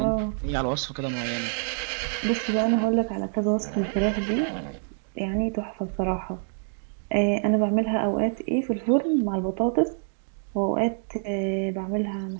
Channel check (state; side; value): silent; left; digital silence